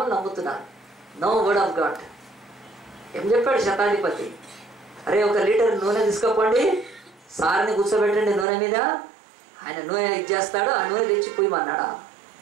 నమ్ముతున్నారు. No word of God. ఏం చెప్పాడు శతాధిపతి? అరే, 1 లీటర్ నూనె తీసుకోపోండి, సార్ని కూర్చోబెట్టండి నూనె మీద, ఆయన నూనె ఇచ్చేస్తాడు, ఆ నూనె తెచ్చి పోయమన్నాడా?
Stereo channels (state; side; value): drops out; left; at 8.5 s